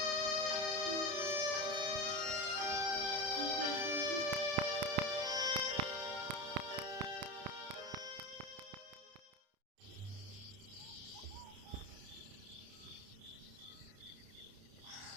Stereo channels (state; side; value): late; left; 31 ms